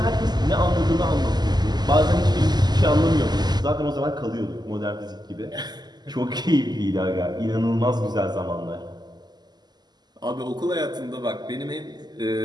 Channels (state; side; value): late; left; 0.20 ms